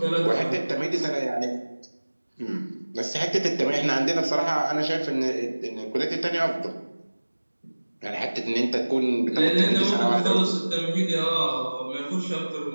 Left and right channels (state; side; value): inverted; both; correlation -1.00